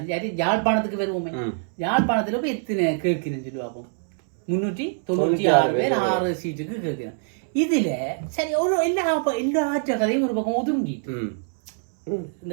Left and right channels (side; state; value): left; silent; 62 dB below the other